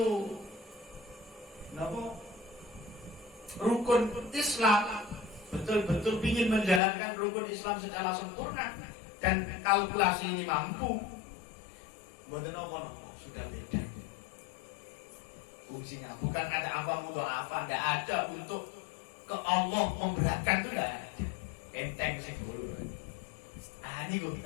rukun Islam, betul-betul ingin menjalankan rukun Islam secara sempurna dan kalkulasi ini mampu, mboten apa sudah beda. Fungsinya bukan ada apa tidak ada untuk ke Allah memberatkan itu tidak ada. Enteng sih dulu. Ini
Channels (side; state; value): right; drops out; at 6.8 s